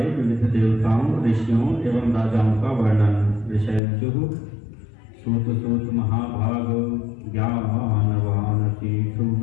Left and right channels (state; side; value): drops out; right; at 3.8 s